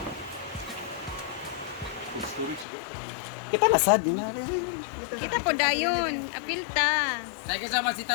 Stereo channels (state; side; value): drops out; right; at 2.7 s